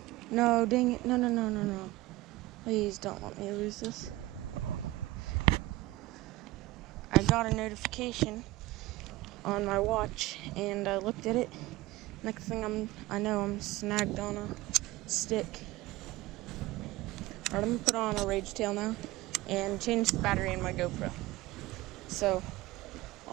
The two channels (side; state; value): left; quieter; 18.4 dB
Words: No, dang it. No, no, no, no, no. Please don't let me lose this. I got a notification on my watch, and I looked at it. Next thing I know I'm snagged on a stick. Alright, I'm gonna put on a rage tail now and change the battery in my GoPro. So